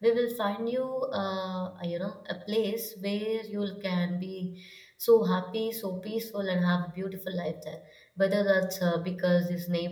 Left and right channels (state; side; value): identical; both; correlation 1.00